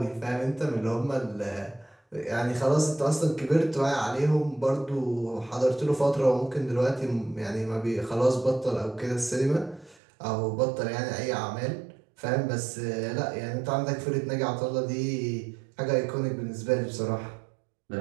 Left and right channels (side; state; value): left; drops out; at 10.0 s